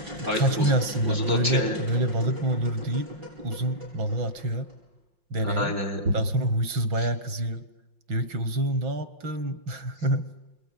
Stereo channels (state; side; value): late; left; 5.6 ms